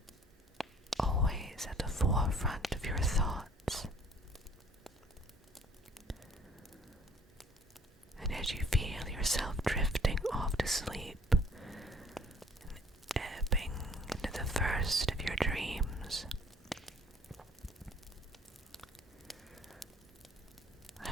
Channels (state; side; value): normal; both; correlation 0.56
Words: always at the forefront of your thoughts. And as you feel yourself drifting off to sleep and ebbing into the first of your dreams,